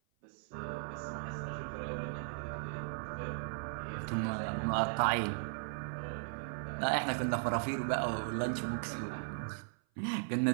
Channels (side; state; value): left; silent; 53 dB below the other